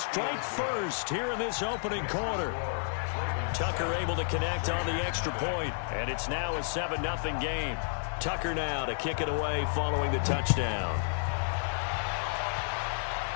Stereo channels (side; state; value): right; silent; digital silence